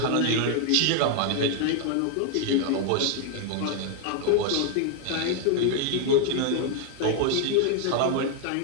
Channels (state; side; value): different; both; correlation 0.00